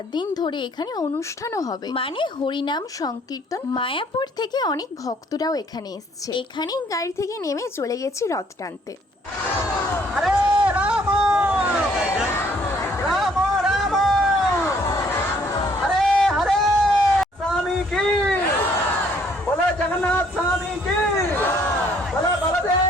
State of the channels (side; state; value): both; normal; correlation 0.63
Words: দিন ধরে এখানে অনুষ্ঠানও হবে, মানে হরিনাম সংকীর্তন। মায়াপুর থেকে অনেক ভক্তরাও এখানে এসছে। এখানেই গাড়ি থেকে নেমে চলে গেছি রথ টানতে। হরে রাম রাম রাম হরে হরে স্বামী কি বলো, জগন্নাথ স্বামী কি বলো,